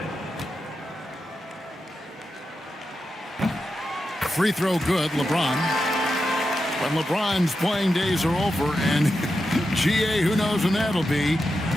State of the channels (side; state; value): both; normal; correlation 0.89